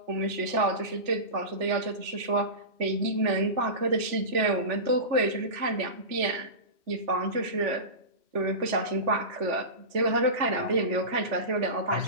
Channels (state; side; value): late; left; 3.4 ms